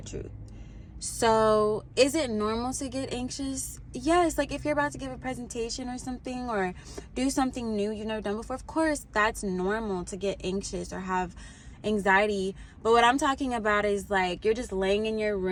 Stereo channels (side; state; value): both; identical; correlation 1.00